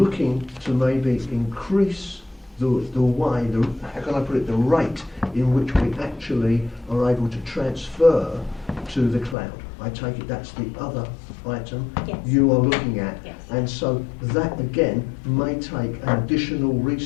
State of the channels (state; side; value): drops out; right; at 9.3 s